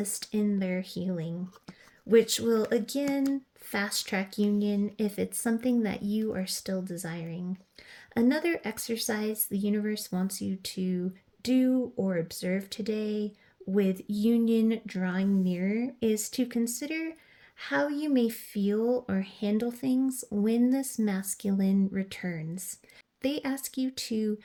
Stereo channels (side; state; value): both; identical; correlation 1.00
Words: in their healing, which will again fast track union if it's something that you are still desiring. Another exercise the universe wants you to do or observe today with union drawing near is to consider how you may feel or handle things when this masculine returns. They ask you to